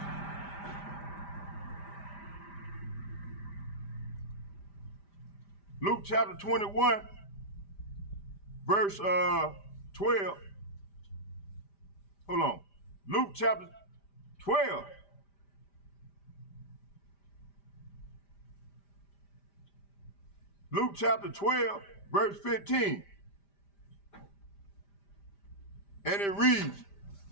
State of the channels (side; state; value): right; late; 5.0 ms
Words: Luke chapter 21, verse 12. Hold on. Luke chapter 12. Luke chapter 12, verse 15. And it reads,